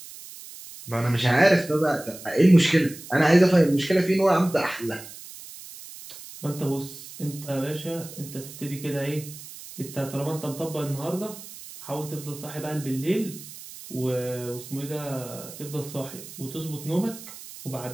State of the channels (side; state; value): right; noise; hiss, 15 dB below the sound